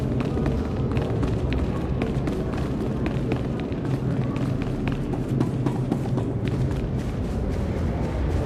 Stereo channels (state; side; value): identical; both; correlation 1.00